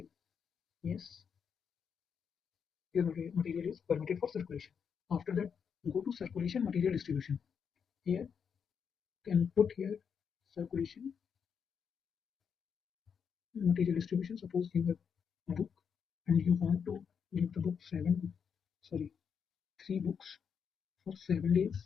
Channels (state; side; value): quieter; right; 6.8 dB